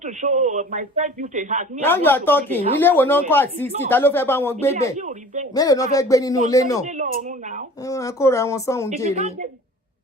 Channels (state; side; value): normal; both; correlation 0.44